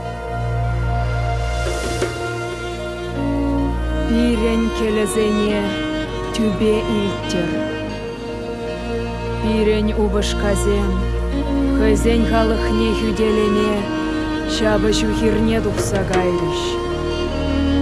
Пирень келезене тюбе илтер. Пирень убышказен, хызень халыхне хюделеме, шабы шухирне тухса гайрыш.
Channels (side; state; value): both; identical; correlation 1.00